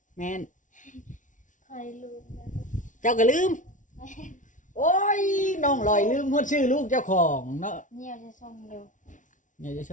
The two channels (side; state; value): right; late; 0.37 ms